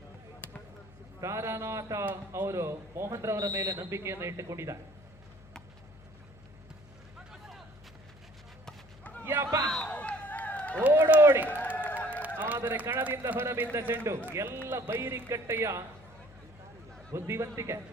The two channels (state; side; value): noise; left; hum, 22 dB below the sound